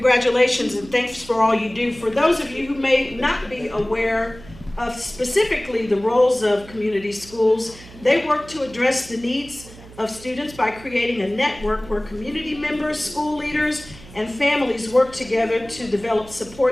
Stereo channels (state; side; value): noise; right; hum, 19 dB below the sound